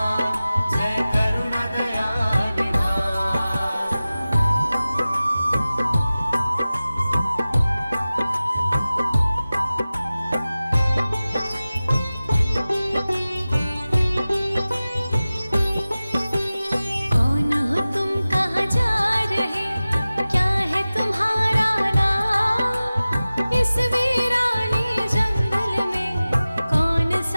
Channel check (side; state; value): both; inverted; correlation -0.97